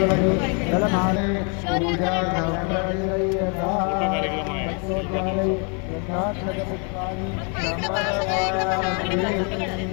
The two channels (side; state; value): right; quieter; 37.0 dB